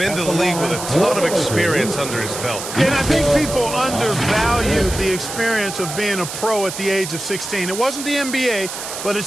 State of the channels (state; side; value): noise; right; hiss, 8 dB below the sound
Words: the league with a ton of experience under his belt. And I think people undervalue the experience of being a pro at the age of 16. It wasn't the NBA, but it's